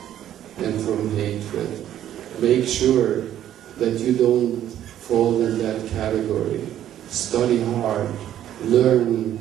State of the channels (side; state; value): left; quieter; 11.4 dB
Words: and from hatred. Make sure that you don't fall in that category. Study hard, learn